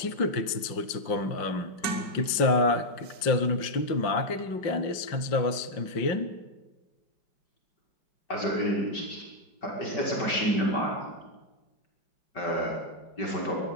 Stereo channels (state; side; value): late; right; 5.7 ms